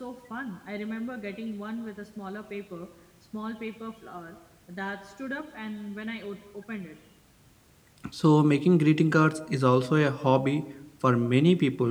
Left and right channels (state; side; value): identical; both; correlation 1.00